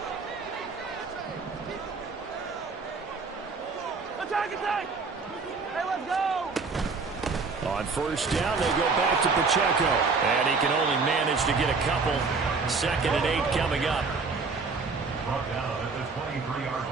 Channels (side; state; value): left; quieter; 4.5 dB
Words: Attack! Hey, let's go! On first down, they go back to Pacheco. And he can only manage to get a couple. Second and 8 coming up. Brought down at the 23-yard